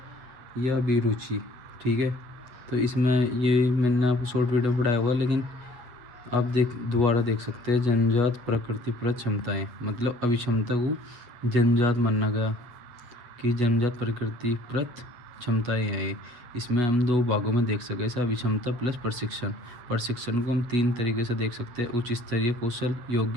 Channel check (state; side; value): late; left; 8.0 ms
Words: या अभिरुचि, ठीक है। तो इसमें ये मैंने आपको शॉर्ट वीडियो पढ़ाया हुआ है, लेकिन आप दोबारा देख सकते हैं। जन्मजात प्रकृतिप्रत क्षमताएं, मतलब अभिक्षमता को जन्मजात माना गया कि जन्मजात प्रकृतिप्रत क्षमताएं हैं ये। इसमें हम दो भागों में देख सकते हैं, अभिक्षमता प्लस प्रशिक्षण। प्रशिक्षण को हम तीन तरीके से देख सकते हैं: उच्च स्तरीय कौशल,